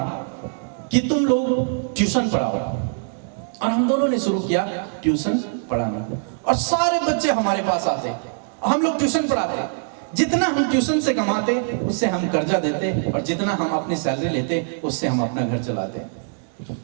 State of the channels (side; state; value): left; silent; digital silence